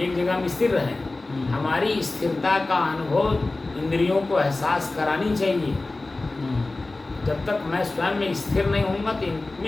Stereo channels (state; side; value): quieter; right; 3.2 dB